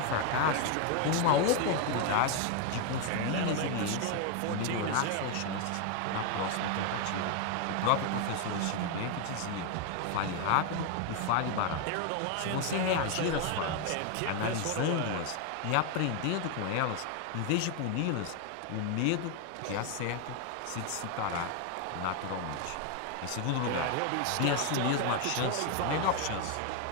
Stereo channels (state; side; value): different; both; correlation 0.01